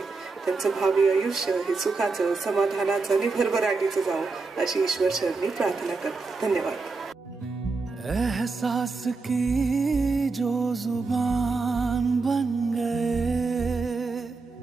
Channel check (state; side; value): quieter; left; 4.1 dB